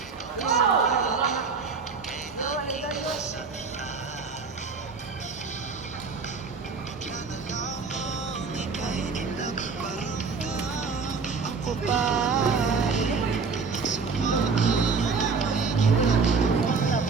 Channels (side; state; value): left; quieter; 4.9 dB